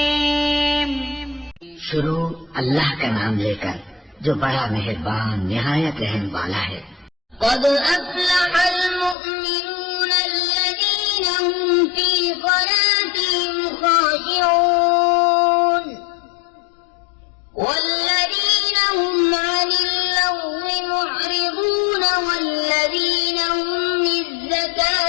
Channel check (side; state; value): right; drops out; at 9.2 s